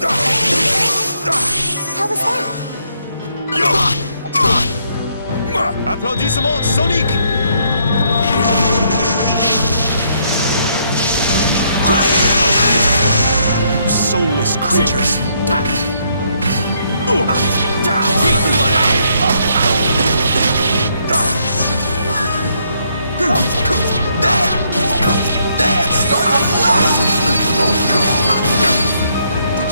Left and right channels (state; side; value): inverted; both; correlation -0.72